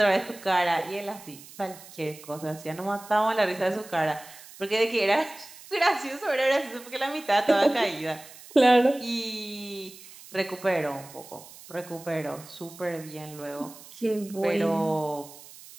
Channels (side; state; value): right; noise; hiss, 19 dB below the sound